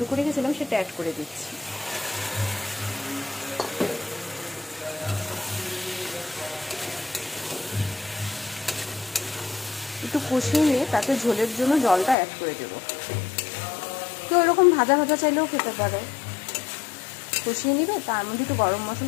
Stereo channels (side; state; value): right; drops out; at 12.2 s